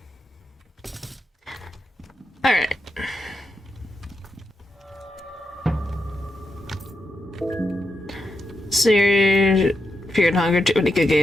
Alright. Fear and Hunger, too many good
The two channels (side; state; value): both; normal; correlation 0.85